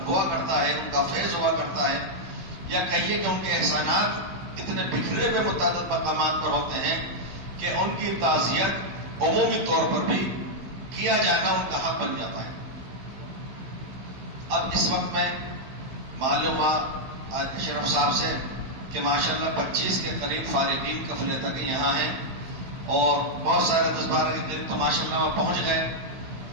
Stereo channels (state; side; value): late; left; 15 ms